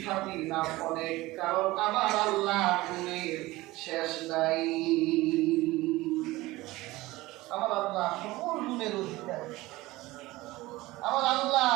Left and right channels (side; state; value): left; quieter; 19.3 dB